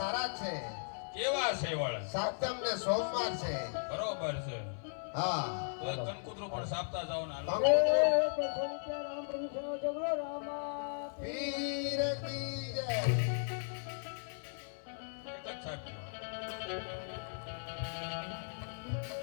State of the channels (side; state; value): right; silent; 53 dB below the other